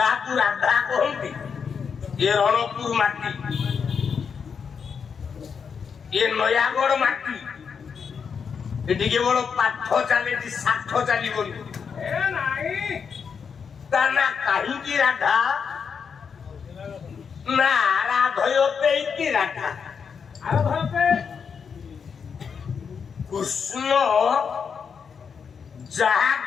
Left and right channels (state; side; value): quieter; right; 6.4 dB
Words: রাধা কহନ୍ତି এ রণপুর মাটি এ নয়াগড় মাটি এদিকে বড় পাঠ চালিছি ষাঠ চালিবনি ए नहीं তা না কাহিঁকি রাধা না রাধয়তে কি রাধা अरे धरते কৃষ্ণ